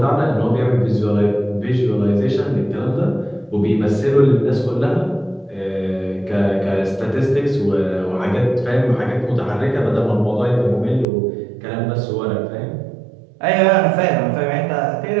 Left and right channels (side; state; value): left; drops out; at 11.1 s